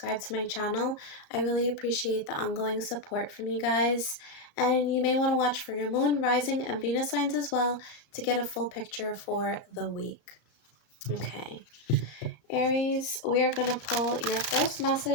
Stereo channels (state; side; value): late; right; 34 ms